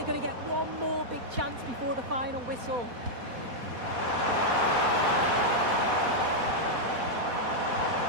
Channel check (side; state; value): left; late; 4.1 ms